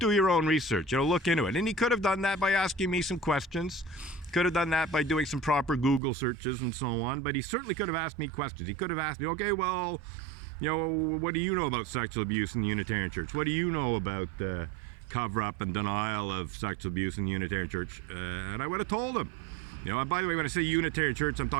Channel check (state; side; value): drops out; left; at 6.0 s